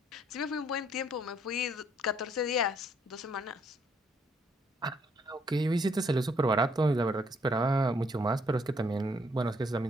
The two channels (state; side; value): normal; both; correlation 0.68